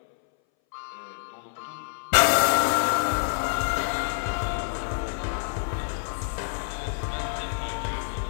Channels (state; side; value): silent; right; 60 dB below the other